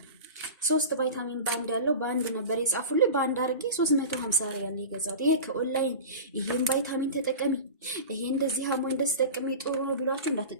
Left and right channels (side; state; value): both; inverted; correlation -0.31